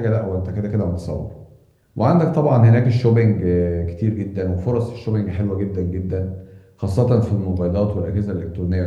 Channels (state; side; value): identical; both; correlation 1.00